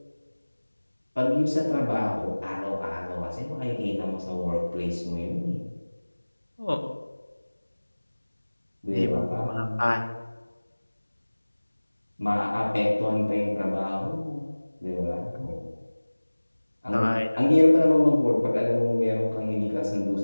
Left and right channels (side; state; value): both; inverted; correlation -1.00